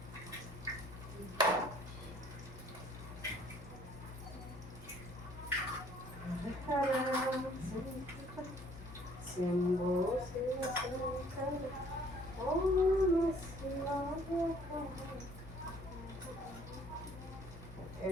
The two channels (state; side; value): noise; left; hum, 14 dB below the sound